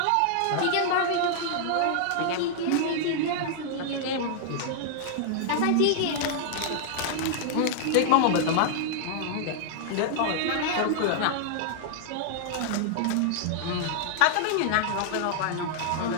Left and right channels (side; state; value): both; different; correlation -0.01